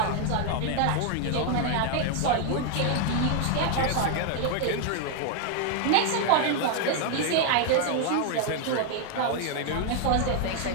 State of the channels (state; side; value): different; both; correlation 0.00